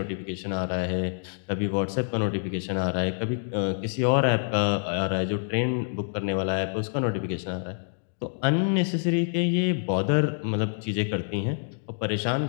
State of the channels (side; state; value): right; silent; digital silence